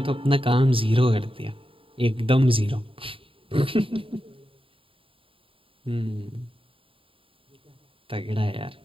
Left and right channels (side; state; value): left; late; 0.26 ms